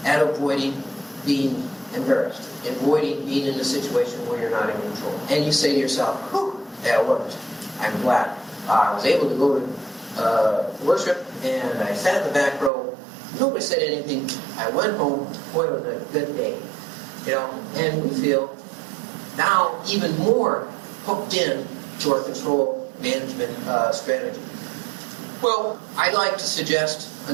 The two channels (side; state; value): left; drops out; at 12.7 s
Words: at avoiding being embarrassed, avoiding being in a situation where you're not in control. And you say to yourself, whew, that worked. I'm glad. I was able to go to worship, and I sat in the back row. Nobody said anything. I went home. Boy, it was a good day. And we feel now even more hooked in to our control management strategy. Well, I'd like to suggest